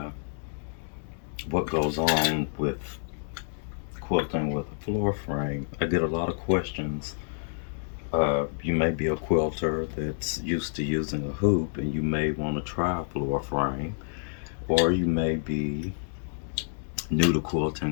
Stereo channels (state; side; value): silent; right; digital silence